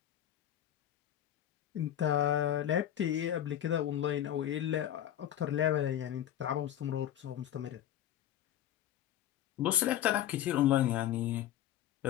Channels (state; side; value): quieter; right; 11.4 dB